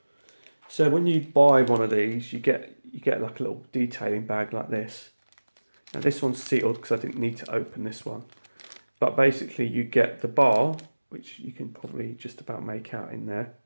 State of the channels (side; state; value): both; inverted; correlation -1.00